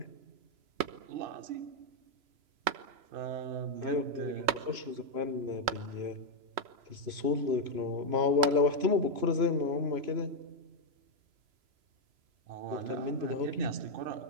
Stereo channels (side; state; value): left; late; 3.2 ms